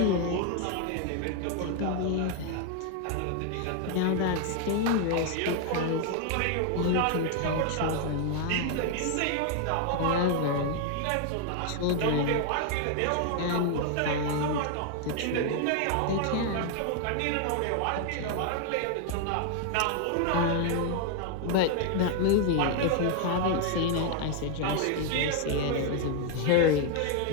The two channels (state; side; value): different; both; correlation 0.00